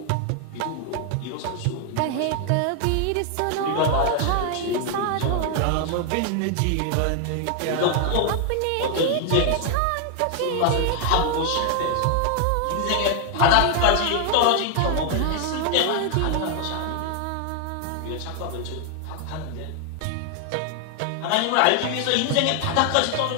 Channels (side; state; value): both; different; correlation 0.00